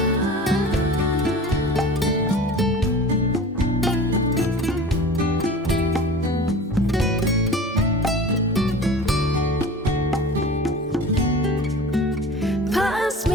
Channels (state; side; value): normal; both; correlation 0.38